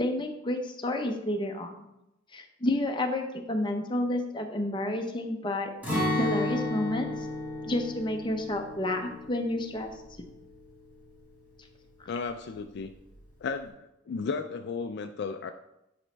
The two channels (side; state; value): both; normal; correlation 0.56